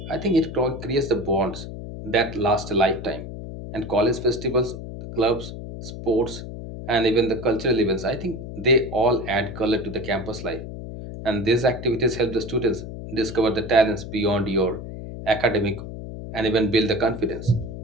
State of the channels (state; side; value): noise; left; hum, 9 dB below the sound